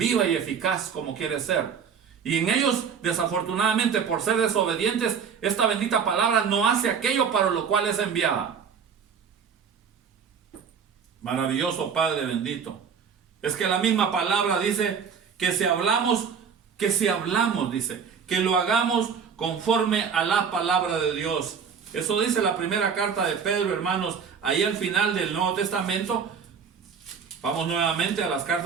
y eficaz como quiere ser. Y en ellos, desafortunadamente, por ser desobedientes, esta bendita palabra no hace aquello para lo cual es enviada. Maravilloso Padre bendito. Es que la misma palabra dice que si hablamos, dice, que lo hagamos conforme a la palabra de Dios. Eso dice la primera carta de Pedro, hermanos, ahí al final del Nuevo Testamento. Vamos nuevamente a las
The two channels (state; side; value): quieter; left; 6.7 dB